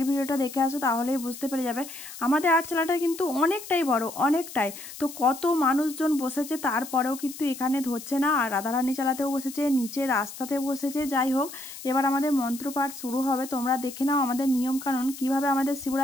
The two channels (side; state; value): left; noise; hiss, 13 dB below the sound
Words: ভিডিওটা দেখে আসো, তাহলেই বুঝতে পেরে যাবে। আমাদের আটচালাটা কিন্তু অনেকটাই বড়, অনেকটাই। তো কত মানুষজন বসেছে, তারপরেও কিন্তু এখানে ধরছে না। আর রাধারানী চালাতেও বসেছে, নিচে রাস্তাতে বসেছে। যাই হোক, এবার আমাদের মন্ত্রপাঠ শুরু হবে। তোমরা দেখে নাও আমাদের নিয়ম কানুন, কিভাবে আমাদের